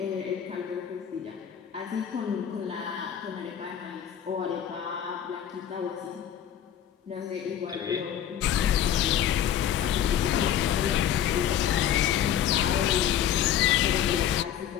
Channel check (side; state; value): right; quieter; 10.0 dB